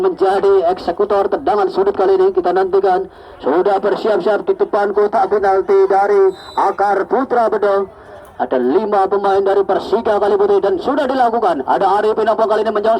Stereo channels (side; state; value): both; identical; correlation 1.00